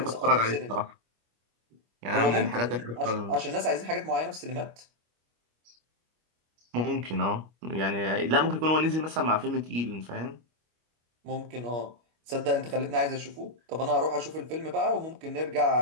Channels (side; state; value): left; late; 25 ms